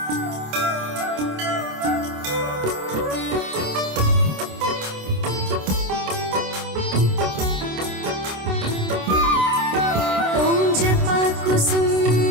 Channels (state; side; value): late; left; 27 ms